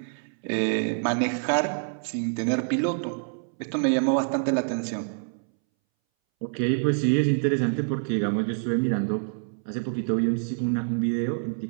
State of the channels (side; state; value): left; silent; 61 dB below the other